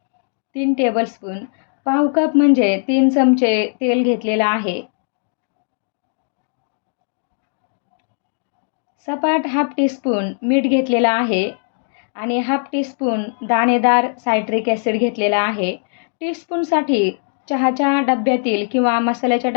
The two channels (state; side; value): silent; right; 63 dB below the other